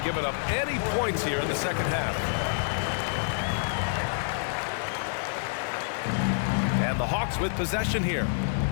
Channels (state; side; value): silent; right; digital silence